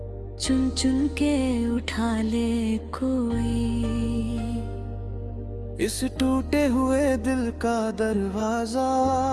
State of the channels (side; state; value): both; identical; correlation 1.00